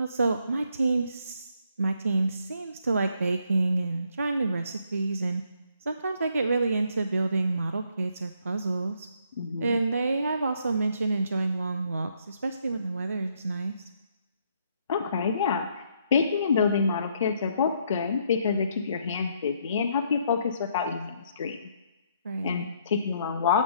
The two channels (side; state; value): both; inverted; correlation -0.70